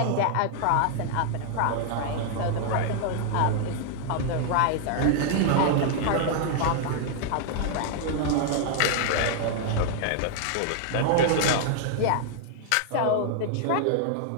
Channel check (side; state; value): both; different; correlation 0.00